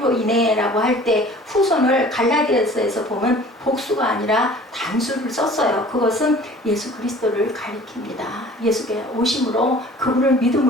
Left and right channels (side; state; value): both; normal; correlation 0.47